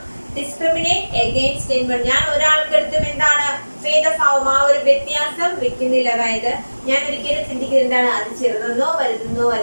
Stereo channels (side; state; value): both; inverted; correlation -1.00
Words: discriminate against anyone. ഞാൻ ഒരാൾക്കടുത്തും എന്താണ്? ഭേദഭാവം, ആ ഒരു വ്യത്യാസം വെക്കുന്നില്ല. അതായത് ഞാൻ ഒരിക്കലും ചിന്തിക്കുന്നത് എന്താണ്? അത് ചെറുതെന്നോ വലുതെന്നോ